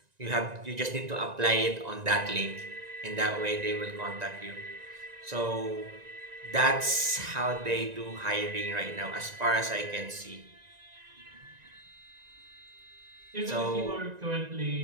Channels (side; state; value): left; late; 1.9 ms